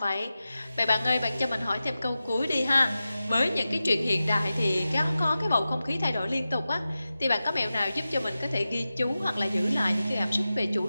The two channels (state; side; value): inverted; both; correlation -0.94